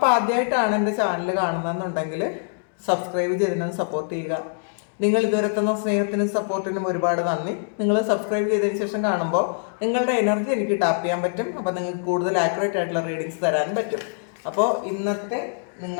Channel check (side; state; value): right; silent; digital silence